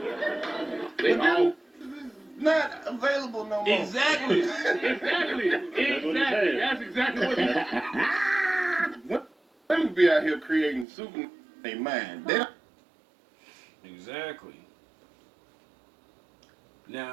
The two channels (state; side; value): drops out; left; at 10.9 s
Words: They all not available no more. Exactly. Exactly. That's exactly what it is. Women be out here creating super in their mind. They don't. Exactly.